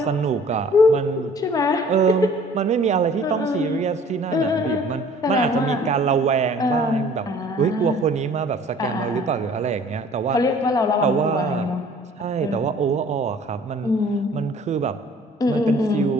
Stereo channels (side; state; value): both; normal; correlation 0.52